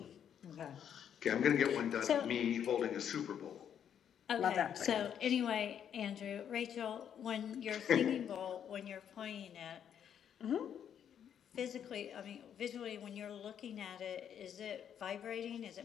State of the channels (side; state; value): right; quieter; 8.9 dB